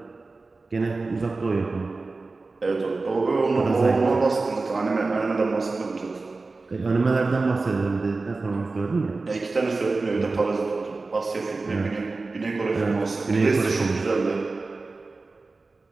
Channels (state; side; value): quieter; left; 3.7 dB